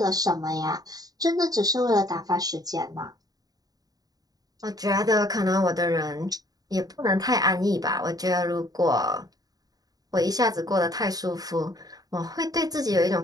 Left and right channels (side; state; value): left; late; 0.18 ms